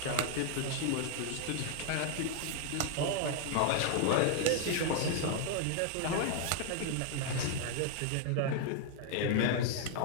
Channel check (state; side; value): different; both; correlation 0.00